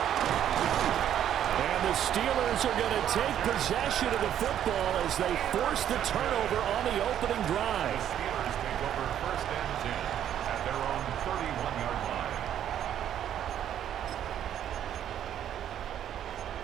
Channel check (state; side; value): quieter; left; 10.4 dB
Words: And the Steelers are going to take possession of the football as they force the turnover on the opening drive. Steelers take over 1st and 10 at their own 31-yard line.